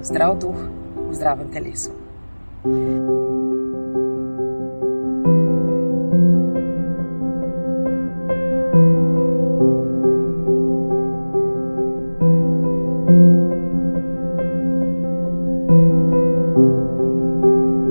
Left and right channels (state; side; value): inverted; both; correlation -1.00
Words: zdrav duh v zdravem telesu.